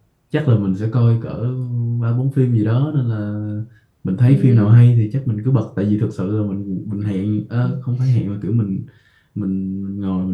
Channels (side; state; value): both; identical; correlation 1.00